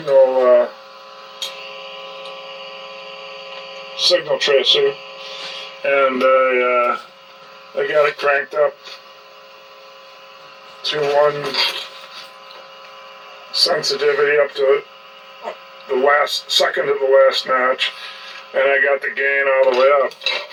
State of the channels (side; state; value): both; identical; correlation 1.00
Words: tracer, and I got it cranked up to 1 sensitivity up to the second to the last notch, and I got the gain all the way up.